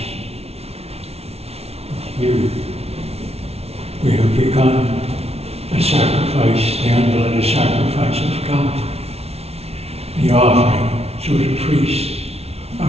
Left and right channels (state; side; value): late; left; 0.30 ms